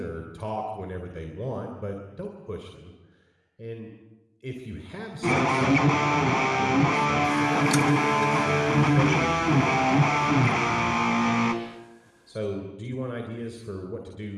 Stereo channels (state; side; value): identical; both; correlation 1.00